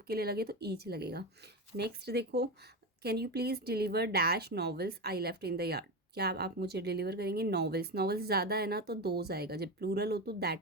के लिए लगे तो ईच लगेगा। नेक्स्ट देखो, can you please deliver dash novels I left in the yard, क्या आप मुझे डिलीवर करेंगे नॉवेल्स, नॉवेल्स ज़्यादा है ना तो दोज आएगा, जब प्लूरल हो तो दैट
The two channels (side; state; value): both; normal; correlation 0.19